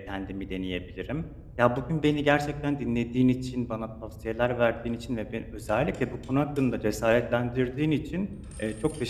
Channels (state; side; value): identical; both; correlation 1.00